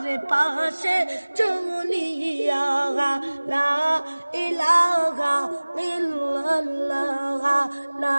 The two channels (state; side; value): inverted; both; correlation -1.00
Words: পাশে চুনিয়া লা ইলাহা ইল্লাল্লাহ লা